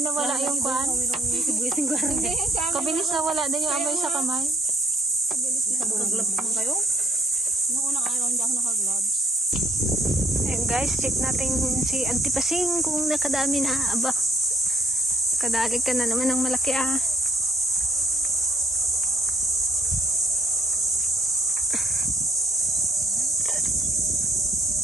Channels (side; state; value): both; normal; correlation 0.64